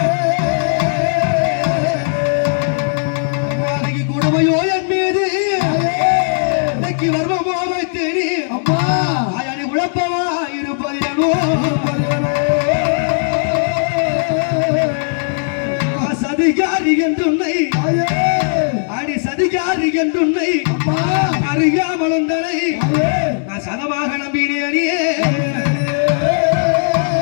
கொடுமையோ என் மீது இன்னைக்கு வர்மமோ வைத்தேனி அம்மா அயனி உழப்பவா இருப்பதேனோ சதிகாரி என்றுன்னை அடி சதிகாரி என்றுன்னை அறியாமல் உண்டனை நான் சதமாக நம்பினேனே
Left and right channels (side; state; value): right; silent; digital silence